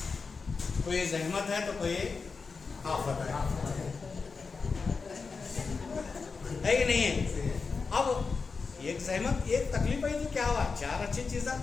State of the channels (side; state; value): right; quieter; 4.8 dB